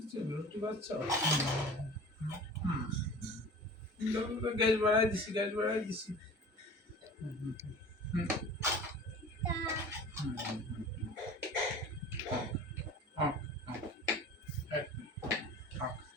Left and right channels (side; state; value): both; normal; correlation 0.40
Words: রুটি বাচ্চা গ্যাস বাড়াই দিছি, গ্যাস বাড়াই দিছি।